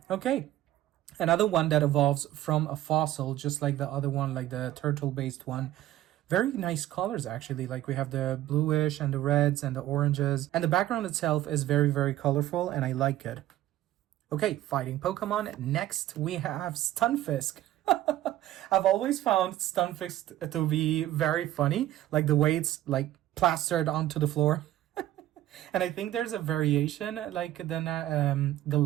Okay. Another one that evolves from a fossil, just like the other one, like the turtle-based one. Very nice colors, actually. Like we have the bluish and the reds and the oranges. And the background itself is very, very colorful, and I like it. Okay, fighting Pokemon. Next, we have Stunfisk. I've always found Stunfisk to be very funny. Like the way it's like plastered onto the floor. And I think there's a variation, like the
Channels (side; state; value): left; quieter; 14.1 dB